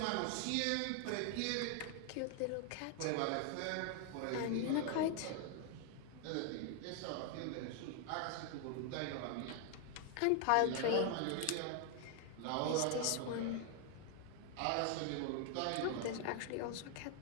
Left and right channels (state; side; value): different; both; correlation 0.00